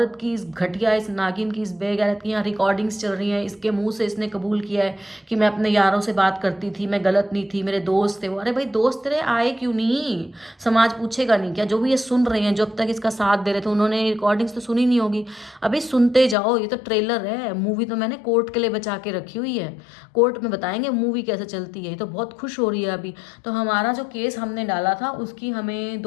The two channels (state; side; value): drops out; right; at 16.4 s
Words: की, इस घटिया, इस नागिन की, इस बेगैरत की यहाँ रिकॉर्डिंग्स चल रही हैं, इसके मुंह से इसने कबूल किया है कि मैं अपने यारों से बात करती थी, मैं गलत नहीं थी, मेरे दोस्त थे वो। अरे भाई दोस्त तेरे आए क्यों नहीं? समाज पूछेगा नहीं क्या? जो भी ये सुन रहे हैं, जो अब तक इसका साथ दे रहे थे, उन्होंने रिकॉर्डिंग्स तो सुनी नहीं होगी। अभी सुनते जाओ, ये तो ट्रेलर है, मूवी तो मैंने कोर्ट के लिए बचा के रखी हुई है। कोर्ट में बताएंगे मूवी कैसे चलती है। ये तो बहुत खुश हो रही है अभी। तो हमारा जो केस हमने डाला था उसकी हमें